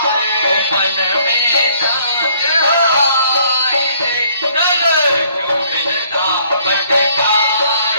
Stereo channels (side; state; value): both; inverted; correlation -0.63